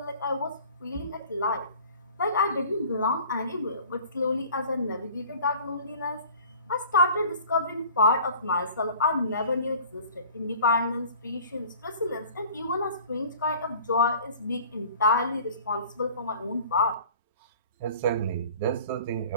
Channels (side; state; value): both; inverted; correlation -0.47